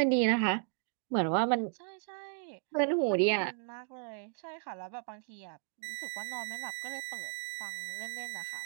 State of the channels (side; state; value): left; silent; 55 dB below the other